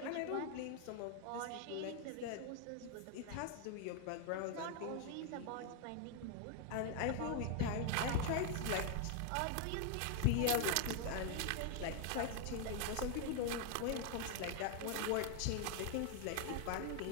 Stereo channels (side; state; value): both; different; correlation 0.01